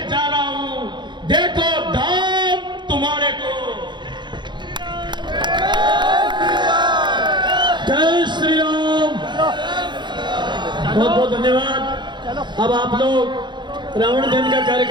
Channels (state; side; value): late; left; 0.22 ms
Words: जा रहा हूं, देखो धाम तुम्हारे को। जय श्री राम। बहुत बहुत धन्यवाद। अब आप लोग रावण दहन का